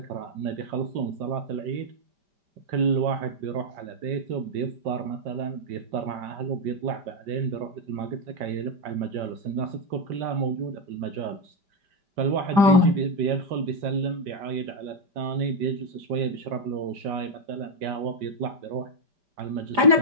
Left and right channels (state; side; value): late; left; 5.1 ms